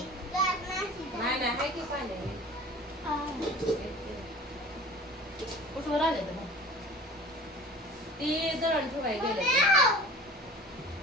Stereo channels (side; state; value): both; normal; correlation 0.41